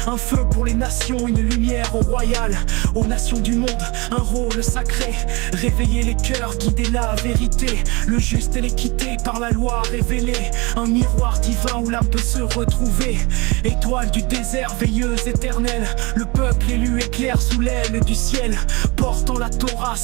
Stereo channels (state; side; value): quieter; left; 26.1 dB